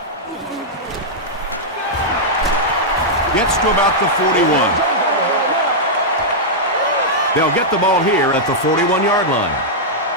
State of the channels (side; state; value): both; normal; correlation -0.07